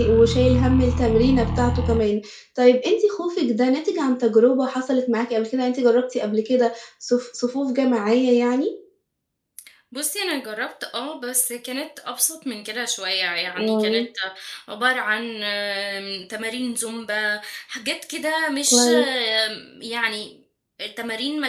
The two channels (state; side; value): identical; both; correlation 1.00